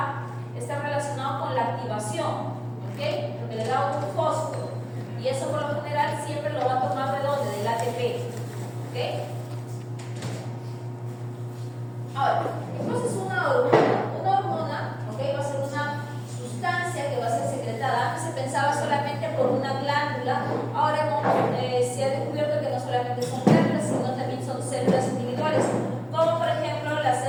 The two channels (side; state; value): both; identical; correlation 1.00